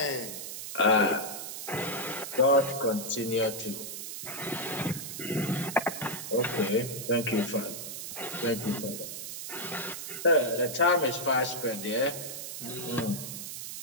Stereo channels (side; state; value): right; noise; hiss, 7 dB below the sound